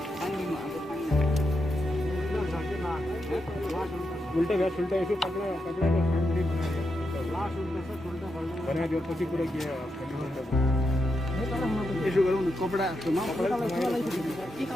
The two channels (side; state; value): both; normal; correlation 0.84